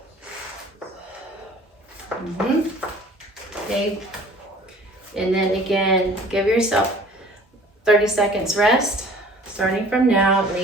Okay. And then again, give yourself 30 seconds rest. Starting from now, at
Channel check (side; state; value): both; normal; correlation 0.50